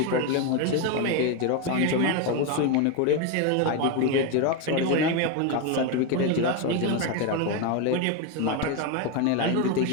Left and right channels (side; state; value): both; different; correlation 0.02